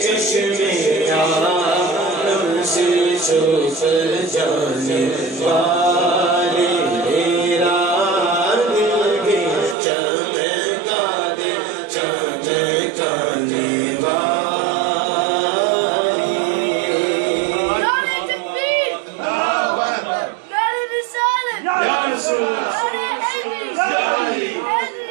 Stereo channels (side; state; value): left; drops out; at 9.8 s